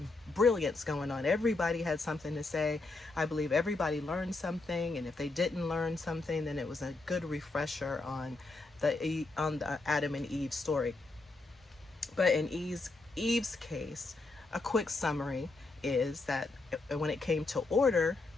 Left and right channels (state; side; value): quieter; right; 3.3 dB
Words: brilliance going on. Everybody had something to say. I believe everybody learned something, and if they didn't learn something, then it was a good refresher on the Adam and Eve story. But in Eve's case, a quick summary is that when it came to order,